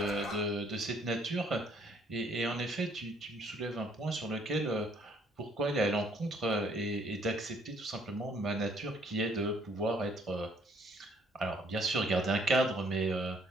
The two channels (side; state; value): both; normal; correlation 0.64